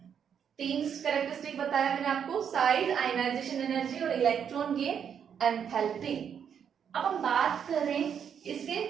3 कैरेक्टरिस्टिक बताया मैंने आपको: साइज, आयनाइजेशन एनर्जी और इलेक्ट्रॉन गेन एंथैल्पी. अब हम बात करें इसके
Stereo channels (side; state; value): left; quieter; 7.9 dB